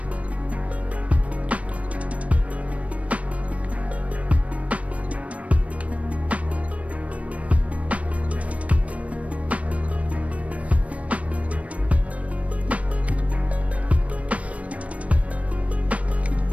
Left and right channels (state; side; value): late; left; 0.065 ms